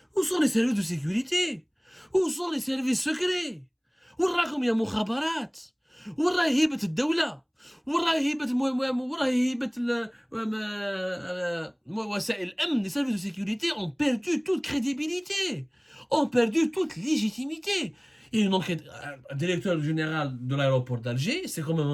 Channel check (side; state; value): both; identical; correlation 1.00